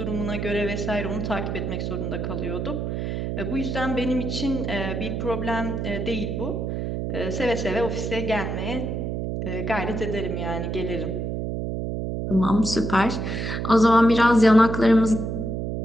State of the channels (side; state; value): right; noise; hum, 3 dB below the sound